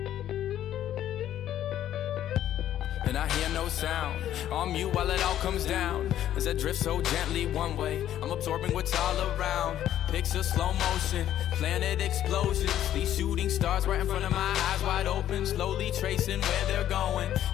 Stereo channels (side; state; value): right; quieter; 11.6 dB